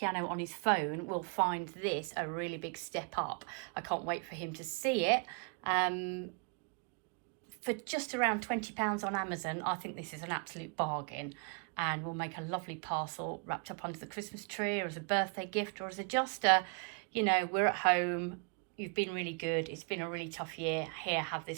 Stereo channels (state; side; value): quieter; left; 36.9 dB